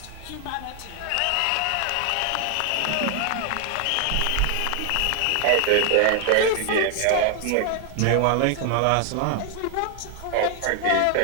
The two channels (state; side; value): different; both; correlation 0.00